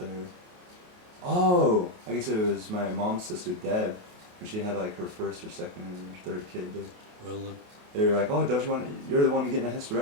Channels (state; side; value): late; left; 28 ms